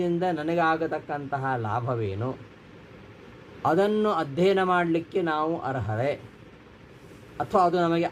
ನನಗಾಗತಕ್ಕಂತಹ ಲಾಭವೇನು, ಅದನ್ನು ಅಧ್ಯಯನ ಮಾಡಲಿಕ್ಕೆ ನಾವು ಅರ್ಹರೇ ಅಥವಾ ಅದು ನಮಗೆ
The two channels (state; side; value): identical; both; correlation 1.00